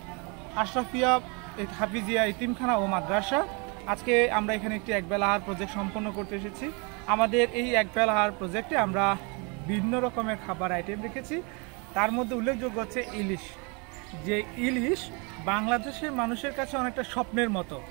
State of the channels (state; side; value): quieter; left; 32.2 dB